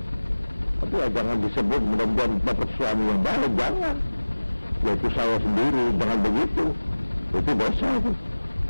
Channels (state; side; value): inverted; both; correlation -1.00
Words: Tapi ya jangan disebut mudah-mudahan dapat suami yang baik, jangan. Yaitu saya sendiri, jangan begitu. Itu dosa itu.